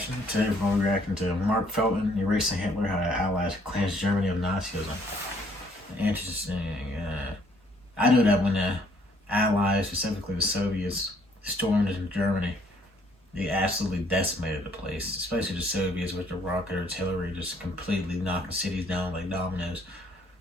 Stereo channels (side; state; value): both; normal; correlation 0.64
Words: Today we're going to be reacting to Mark Felton erasing Hitler, how the Allies cleansed Germany of Nazism. Interesting. I know that when the Allies, specifically the Soviets, stormed into Germany, they absolutely decimated the place, especially the Soviets with the rocket artillery just completely knocking cities down like dominoes.